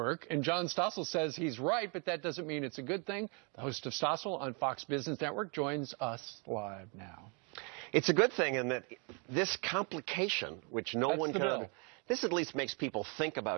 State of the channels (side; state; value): left; quieter; 35.1 dB